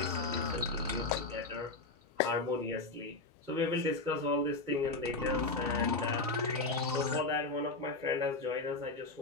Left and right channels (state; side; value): quieter; right; 3.4 dB